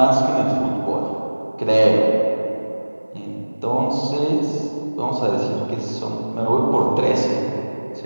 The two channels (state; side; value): inverted; both; correlation -1.00